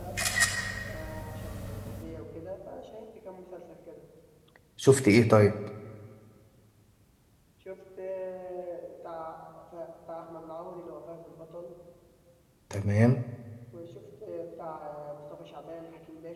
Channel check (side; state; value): both; identical; correlation 1.00